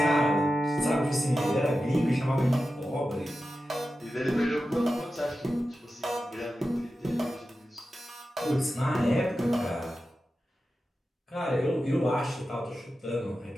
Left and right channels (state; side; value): normal; both; correlation 0.92